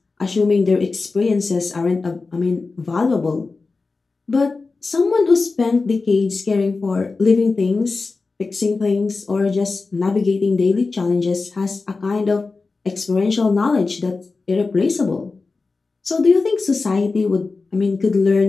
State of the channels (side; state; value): right; quieter; 4.0 dB